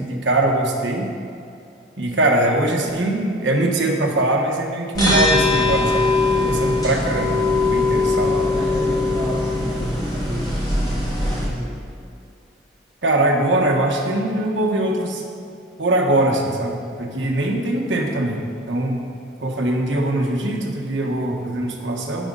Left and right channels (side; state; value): both; normal; correlation 0.40